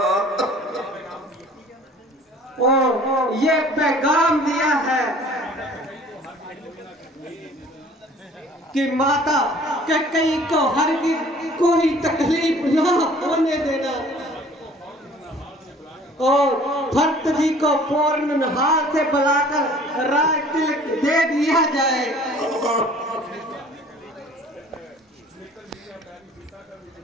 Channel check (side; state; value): both; normal; correlation 0.51